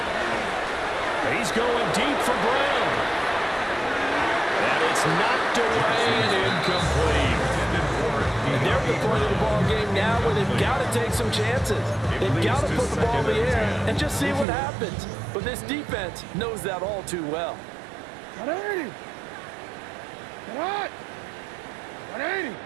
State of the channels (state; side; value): drops out; left; at 14.5 s